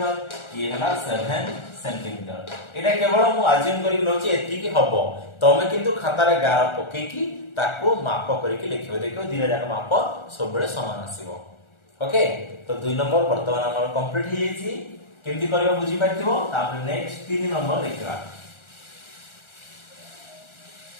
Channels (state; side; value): late; right; 1.4 ms